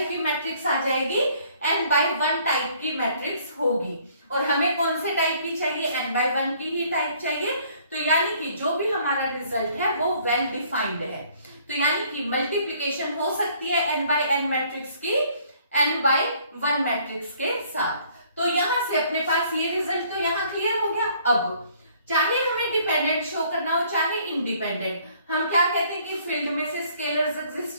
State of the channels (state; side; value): inverted; both; correlation -0.60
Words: की मैट्रिक्स आ जाएगी, n by 1 टाइप की मैट्रिक्स होगी। और हमें कौन से टाइप की चाहिए, n by 1 की ही टाइप चाहिए। तो यानी कि जो भी हमारा रिजल्ट है वो वेल डिफाइंड है। तो यानी कि मल्टीप्लीकेशन हो सकती है n by n मैट्रिक्स की n by 1 मैट्रिक्स के साथ। तो यहां से अपने पास ये रिजल्ट तो यहाँ क्लियर हो गया। अब चाहे हमें डिपेंडेंट शो करना हो चाहे इंडिपेंडेंट, हम क्या कहते हैं कि फील्ड में से स्केलर्स